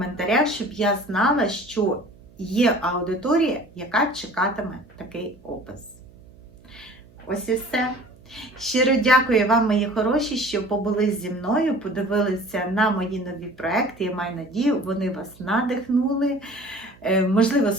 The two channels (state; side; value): noise; right; hum, 26 dB below the sound